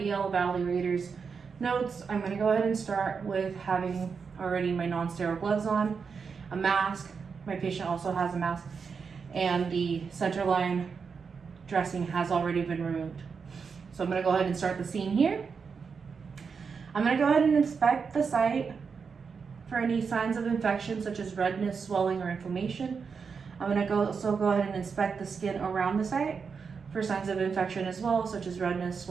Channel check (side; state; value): left; quieter; 5.7 dB